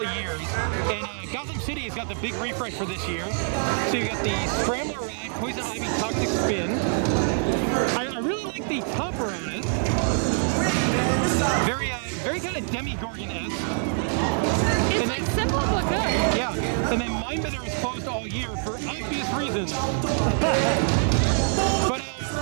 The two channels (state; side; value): silent; left; 62 dB below the other